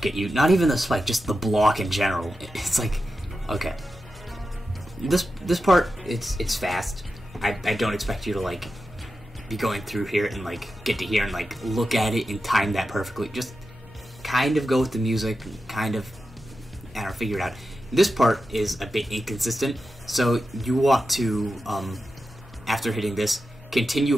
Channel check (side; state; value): both; normal; correlation 0.91